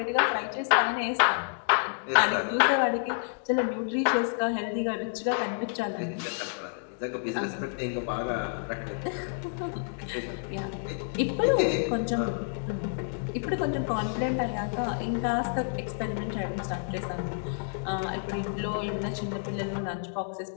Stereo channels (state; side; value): silent; right; digital silence